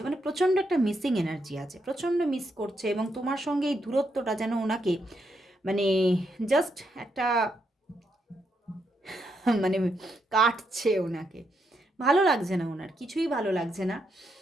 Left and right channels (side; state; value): both; normal; correlation 0.79